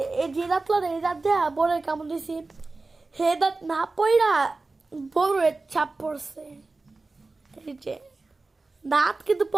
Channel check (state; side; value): quieter; left; 3.5 dB